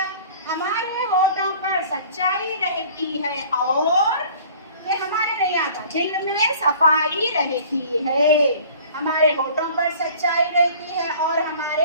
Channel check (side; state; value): both; inverted; correlation -0.48